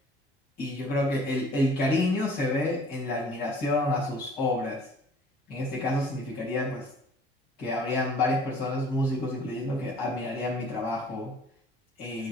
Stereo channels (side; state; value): both; normal; correlation 0.53